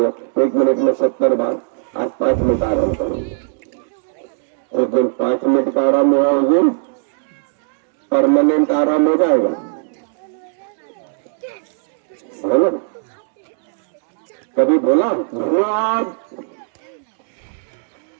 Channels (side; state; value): left; silent; digital silence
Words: 1 मिनट में 70 बार, आज 5 मिनट आराम करूंगा। एक दिन 5 मिनट का आराम हुआ, उस दिन परमानेंट आराम हो जाएगा, है ना? कभी बोला धन्यवाद